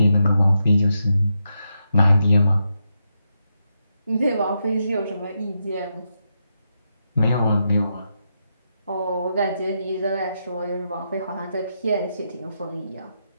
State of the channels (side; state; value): both; inverted; correlation -0.83